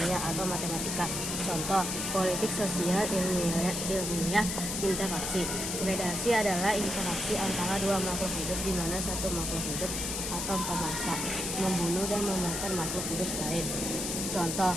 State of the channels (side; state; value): left; noise; hiss, 2 dB below the sound